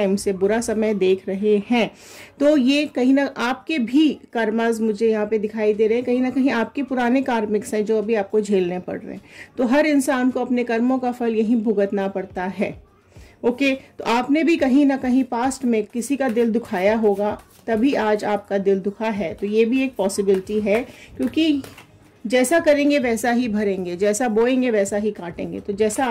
से बुरा समय देख रहे हैं, तो ये कहीं ना आपके भी कर्मास मुझे यहाँ पे दिखाई दे रहे हैं, कहीं ना कहीं आपके पुराने कार्मिक्स हैं जो अभी आपको झेलने पड़ रहे हैं। तो हर इंसान को अपने कर्मों का फल यहीं भुगतना पड़ता है। ओके, तो आपने भी कहीं ना कहीं पास्ट में किसी का दिल दुखाया होगा, तभी आज आपका दिल दुखा है। तो ये भी एक पॉसिबिलिटी है, क्योंकि जैसा करेंगे वैसा ही भरेंगे, जैसा बोएंगे वैसा ही काटेंगे। तो जैसा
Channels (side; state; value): both; identical; correlation 1.00